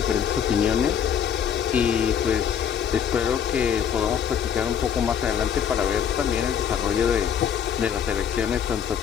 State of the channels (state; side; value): quieter; right; 8.2 dB